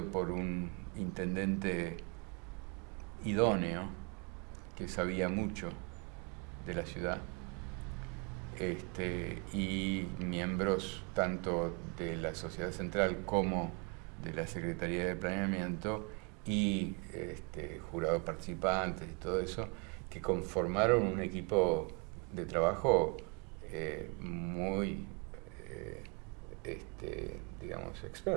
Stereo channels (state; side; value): quieter; left; 31.9 dB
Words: por un intendente idóneo que sabía mucho de la ciudad, y miembros tanto de la Sociedad Central como de la Secretaría de Planeamiento y jurados participantes y todo eso, que conformaron un equipo de trabajo muy, digamos,